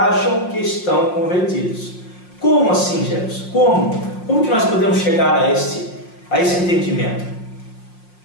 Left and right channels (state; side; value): late; right; 5.6 ms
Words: que estão convertidos. Como assim, Jefferson? Como que nós podemos chegar a esse entendimento?